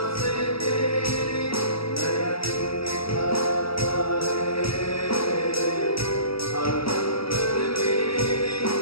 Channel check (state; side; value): late; right; 0.75 ms